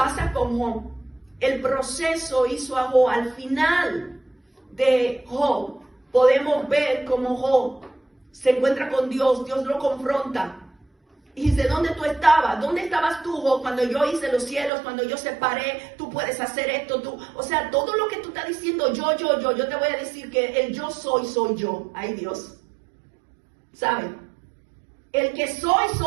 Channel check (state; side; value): drops out; left; at 14.7 s